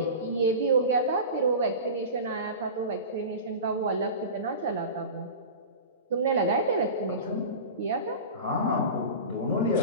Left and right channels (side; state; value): both; inverted; correlation -0.31